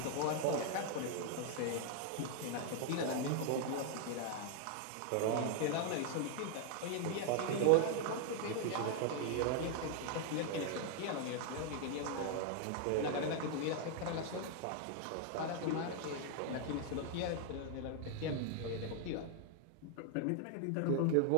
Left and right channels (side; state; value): both; different; correlation 0.00